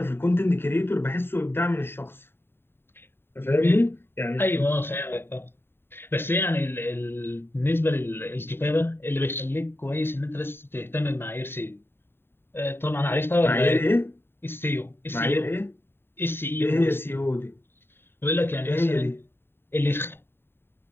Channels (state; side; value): late; right; 0.11 ms